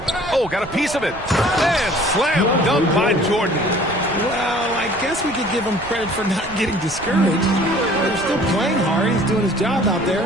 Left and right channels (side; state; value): right; noise; rumble, 18 dB below the sound